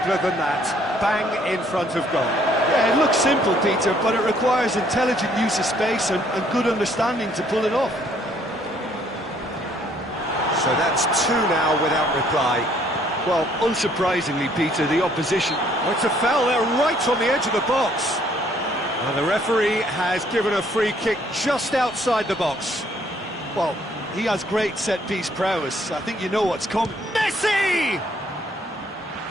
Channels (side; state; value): both; normal; correlation 0.64